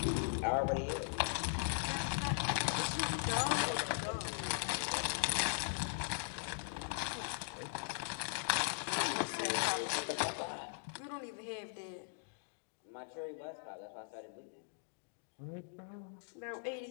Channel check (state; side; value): silent; right; digital silence